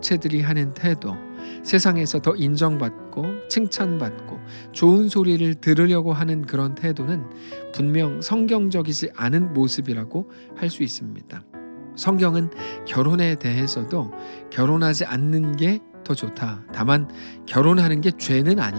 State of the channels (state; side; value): inverted; both; correlation -1.00